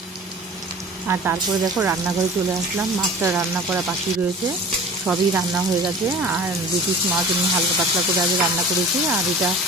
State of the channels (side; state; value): both; normal; correlation 0.41